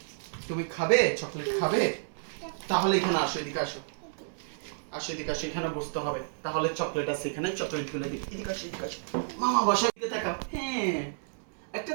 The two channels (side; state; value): left; silent; 57 dB below the other